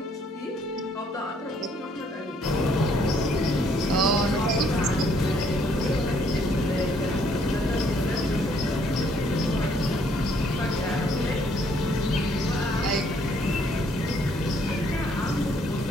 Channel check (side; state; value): both; normal; correlation 0.66